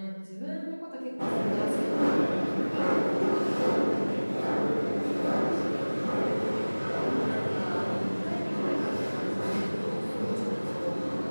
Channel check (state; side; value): inverted; both; correlation -1.00